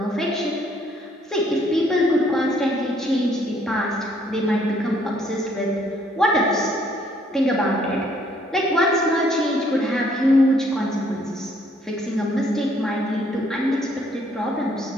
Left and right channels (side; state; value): both; normal; correlation 0.66